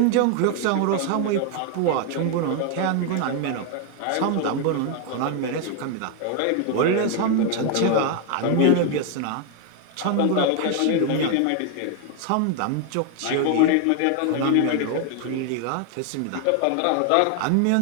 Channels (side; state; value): both; different; correlation 0.01